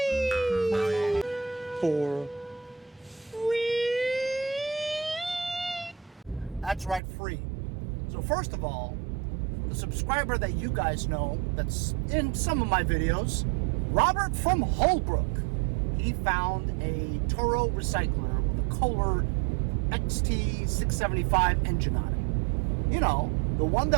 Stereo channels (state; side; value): drops out; left; at 7.0 s